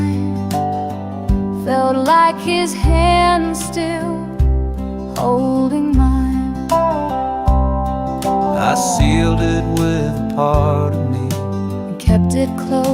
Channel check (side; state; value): both; identical; correlation 1.00